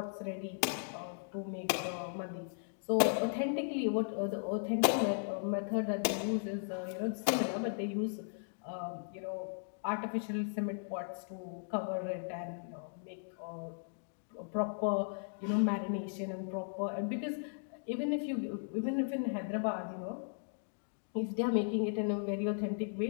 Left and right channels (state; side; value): silent; right; digital silence